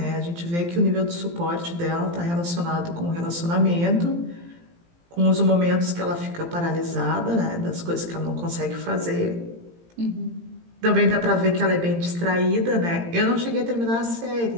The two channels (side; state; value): left; late; 17 ms